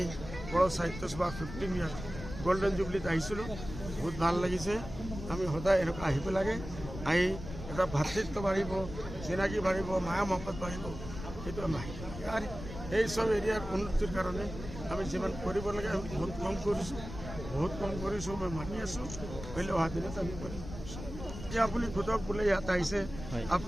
বড় সাহিত্য সভা 15 ইয়াৰ গোল্ডেন জুবলিত আহিছিলোঁ বহুত ভাল লাগিছে আমি সদায় এনেকুৱা আহিব লাগে আহি এটা ভাতৃত্ব বাঢ়িব চিনাকি বাঢ়িব মায়া মহব্বত বাঢ়িব সেইটো আমি আহিব লাগে আৰু এই সব এৰিয়াৰ উন্নতিৰ কাৰণে আমি যিমান কৰিব লাগে আমি বহুত কম কৰিছোঁ মই মানি আছোঁ হ'লে অহা দিনত আমি কৰিম এতিয়া আপুনি সোধক বোলে ইয়াত আহিছে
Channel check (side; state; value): left; noise; rumble, 10 dB below the sound